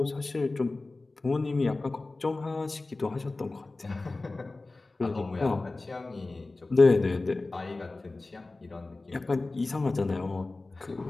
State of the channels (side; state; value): right; quieter; 3.3 dB